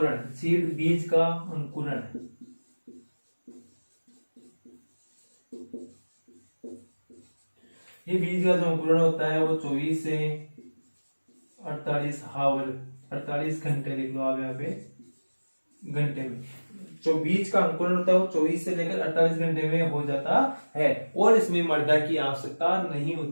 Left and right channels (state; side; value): inverted; both; correlation -1.00